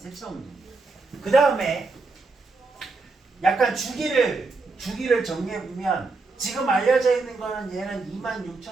운동이에요. 그 다음에 약간 주기를 정리해보면 지금 알려져 있는 거는 얘는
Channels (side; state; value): left; quieter; 3.8 dB